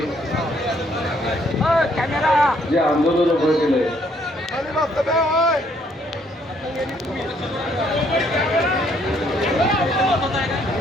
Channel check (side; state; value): both; normal; correlation 0.67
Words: जे आंदोलन उभं केलंय